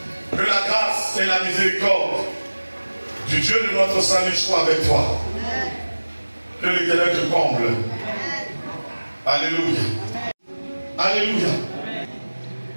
Que la grâce et la miséricorde du Dieu de notre salut soient avec toi. Que l'Éternel te comble. Alléluia. Alléluia.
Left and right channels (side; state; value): both; inverted; correlation -1.00